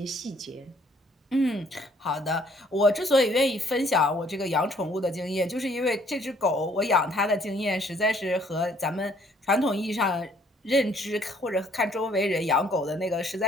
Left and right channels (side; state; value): both; normal; correlation 0.63